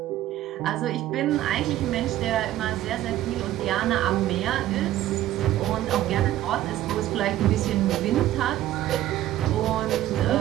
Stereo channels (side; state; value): left; quieter; 13.6 dB